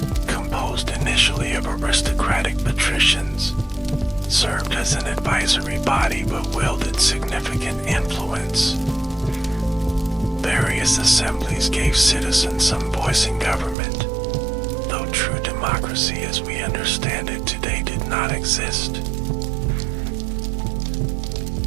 composed initially of aristocratic patricians, served as an advisory body but wielded significant influence. Various assemblies gave citizens some voice in government, though true democracy as we understand it today did not exist.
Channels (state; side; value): drops out; left; at 13.8 s